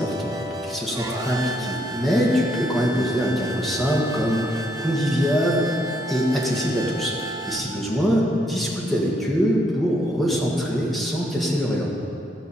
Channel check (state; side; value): normal; both; correlation 0.73